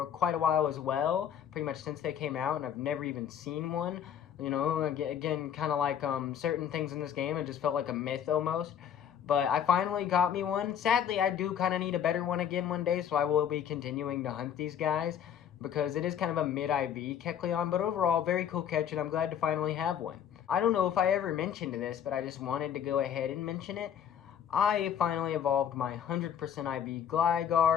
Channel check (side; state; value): right; quieter; 9.0 dB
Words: quite a while as well, pretty much since they came out, and I've never even seen one. You know, again, kind of like certain things in this game, it just felt like a myth almost. But I finally got me one. Sadly, I do kind of need a better one again one day, so I will be continuing to hunt these guys, because it is kind of a mid-IV Kecleon, but overall, very cool catch, and I'm glad to finally have one. I don't know if I ever mentioned this, but I just wanted to go ahead and mention it. I finally evolved my 100% IV